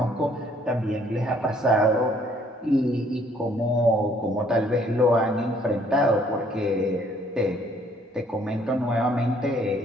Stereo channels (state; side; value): normal; both; correlation 0.63